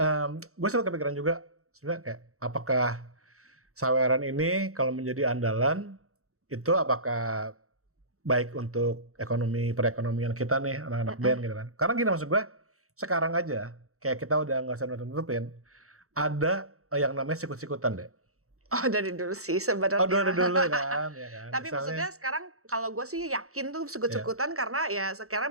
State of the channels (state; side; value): late; left; 0.64 ms